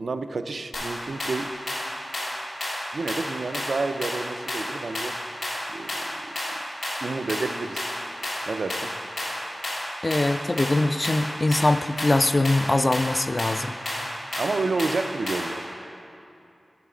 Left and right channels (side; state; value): both; normal; correlation 0.95